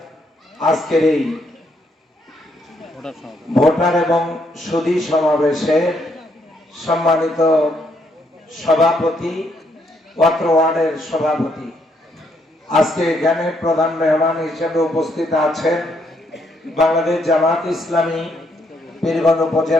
আজকের এই ভোটার এবং সুধী সমাবেশের সম্মানিত সভাপতি, অত্র ওয়ার্ডের সভাপতি, আজকে এখানে প্রধান মেহমান হিসেবে উপস্থিত আছেন বাংলাদেশ জামাত ইসলামী পীরগঞ্জ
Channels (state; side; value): normal; both; correlation 0.74